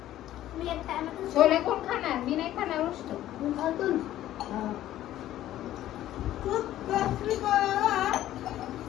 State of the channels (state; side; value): quieter; right; 13.4 dB